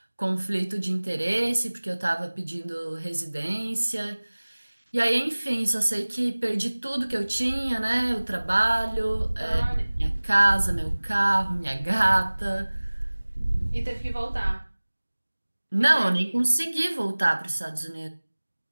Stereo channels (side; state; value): both; inverted; correlation -1.00